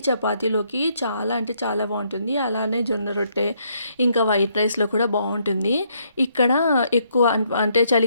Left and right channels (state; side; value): inverted; both; correlation -0.72